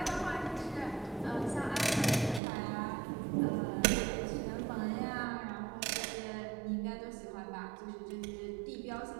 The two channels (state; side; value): drops out; left; at 2.4 s